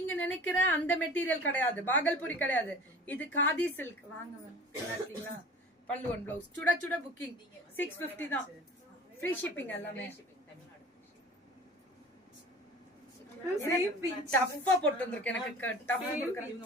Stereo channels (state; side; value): normal; both; correlation 0.41